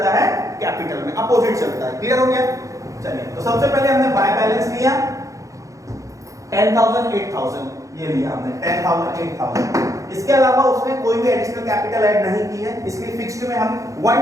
है कैपिटल में, अपोजिट चलता है। क्लियर हो गया? चलिए, तो सबसे पहले हमने बाय बैलेंस लिया 10,000 8,000, ये लिया हमने 10,000 8,000। इसके अलावा उसमें कोई भी एडिशनल कैपिटल ऐड नहीं की है, इसलिए फिक्स्ड में हम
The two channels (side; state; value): left; late; 0.16 ms